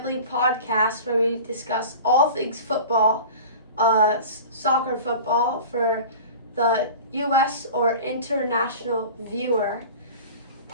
Podcast, where we discuss all things football, soccer football for the U.S. or international viewer.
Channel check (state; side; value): inverted; both; correlation -0.37